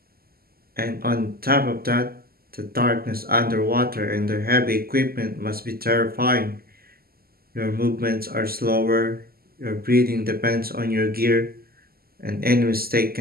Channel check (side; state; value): left; late; 0.44 ms